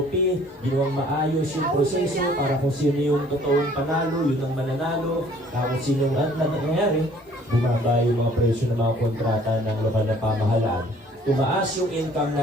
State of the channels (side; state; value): both; normal; correlation 0.56